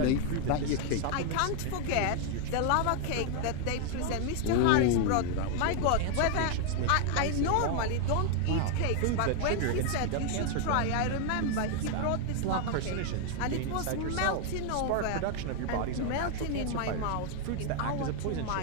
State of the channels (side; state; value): both; different; correlation 0.01